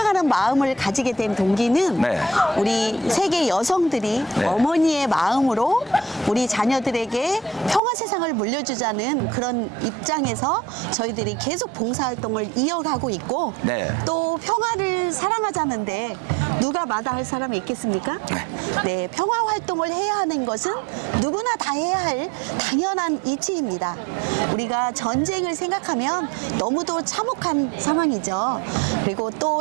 마음을 가지게 된 동기는 네. 우리 세계 여성들이 네. 어머니의 마음으로 우리 자녀들에게 평화 세상을 물려주자는 그런 입장에서 저희들이 계속 봉사활동을 이어가고 있고 네. 또 평화를 사랑하자는데 누가 마다할 사람이 있겠습니까? 네, 평화 활동을 해야 하는 것은 누구나 다 해야 할 당연한 이치입니다. 우리가 전쟁을 생각하면 너무도 참혹한 상황이죠. 그리고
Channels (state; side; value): drops out; left; at 7.8 s